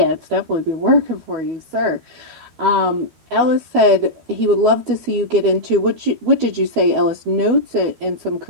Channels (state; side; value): late; left; 13 ms